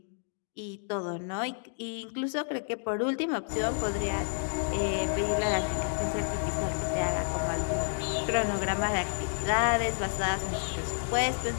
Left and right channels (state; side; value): silent; right; digital silence